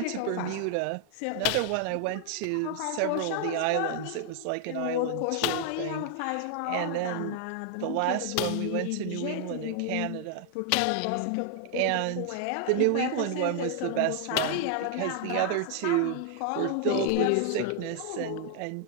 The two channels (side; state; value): both; different; correlation 0.00